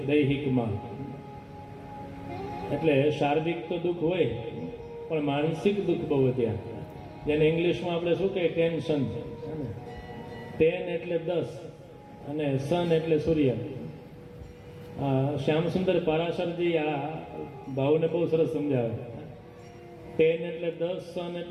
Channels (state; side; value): identical; both; correlation 1.00